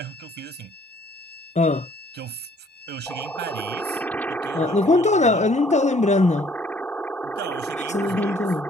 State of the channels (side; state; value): both; normal; correlation 0.60